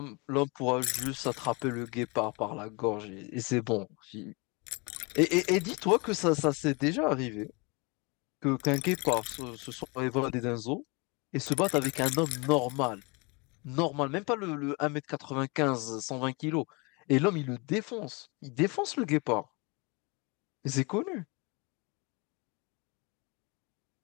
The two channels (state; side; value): quieter; right; 29.3 dB